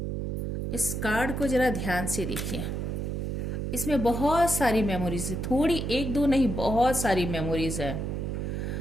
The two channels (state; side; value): noise; right; hum, 2 dB below the sound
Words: इस कार्ड को जरा ध्यान से देखिए, इसमें बहुत सारी मेमोरीज है, थोड़ी एक दो नहीं, बहुत सारी मेमोरीज है,